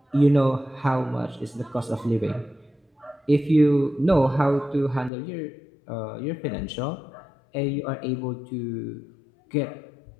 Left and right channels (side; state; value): right; drops out; at 5.1 s